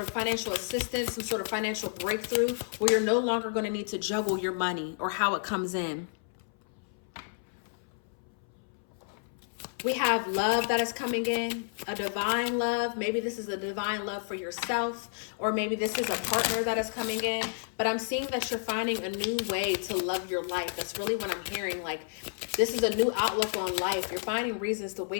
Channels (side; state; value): right; silent; 57 dB below the other